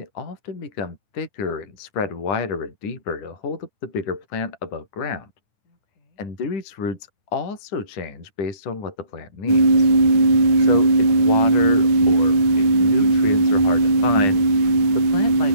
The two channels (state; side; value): late; right; 9.0 ms